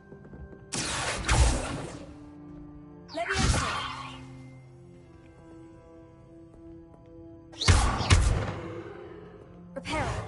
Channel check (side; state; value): both; identical; correlation 1.00